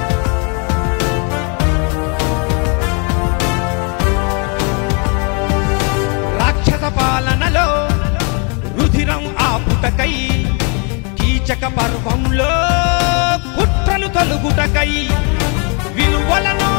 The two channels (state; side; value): quieter; right; 35.6 dB